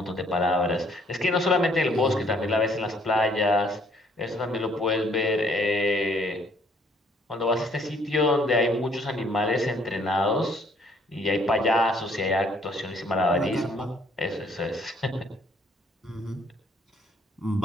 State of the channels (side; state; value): both; normal; correlation 0.64